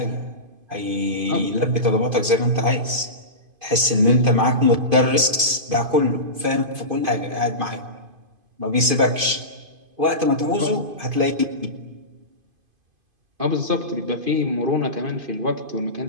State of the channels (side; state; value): left; late; 2.5 ms